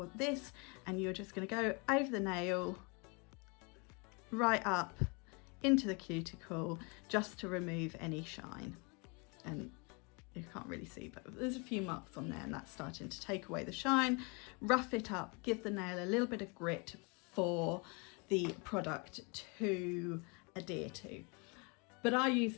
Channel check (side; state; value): right; quieter; 31.7 dB